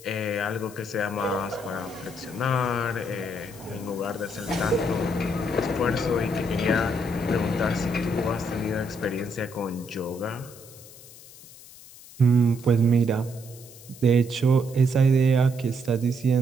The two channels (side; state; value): left; noise; hiss, 19 dB below the sound